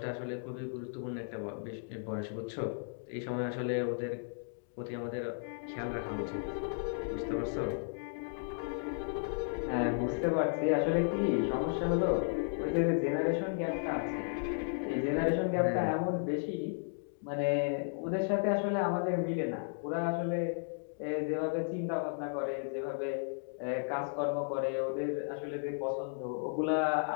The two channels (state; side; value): silent; right; digital silence